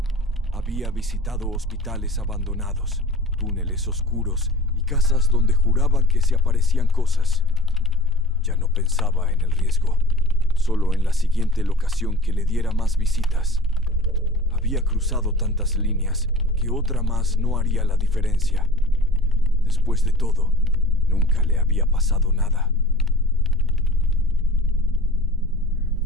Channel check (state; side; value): normal; both; correlation 0.41